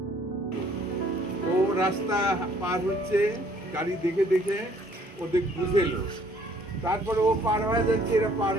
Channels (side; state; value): both; normal; correlation 0.61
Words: ও রাস্তা পার হচ্ছে গাড়ি দেখে দেখে ওদের বুঝেলো, তারপরে ও পার হয়ে যাচ্ছে, এরা পার